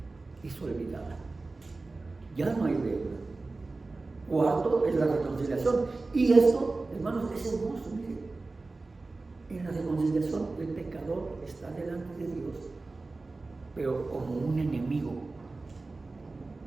es olvidada. Ya no hay deuda. Cuarto es la reconciliación. Y esto, hermanos, es hermoso. Miren, en la reconciliación el pecador está delante de Dios, pero como un enemigo.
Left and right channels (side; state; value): left; quieter; 3.5 dB